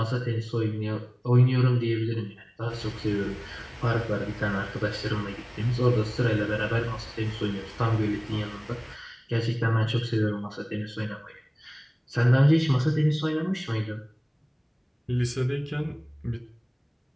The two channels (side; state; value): both; identical; correlation 1.00